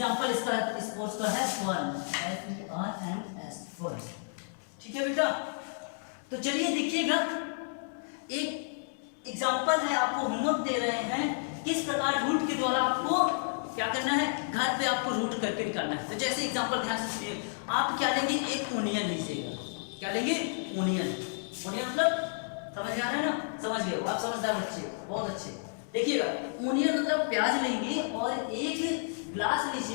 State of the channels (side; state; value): right; silent; digital silence